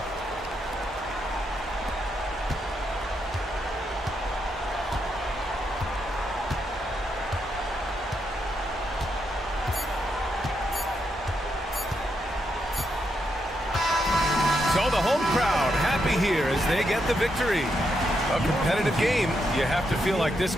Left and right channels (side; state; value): both; normal; correlation 0.81